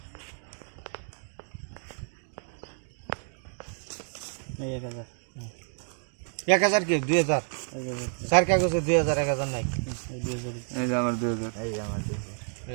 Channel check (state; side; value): silent; left; 58 dB below the other